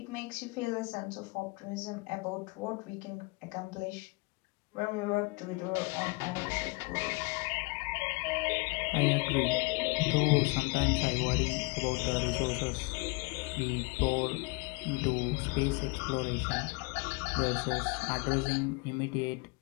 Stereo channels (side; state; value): right; quieter; 26.7 dB